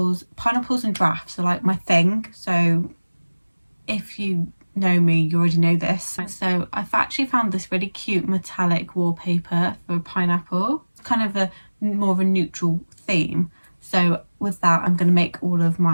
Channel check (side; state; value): both; inverted; correlation -1.00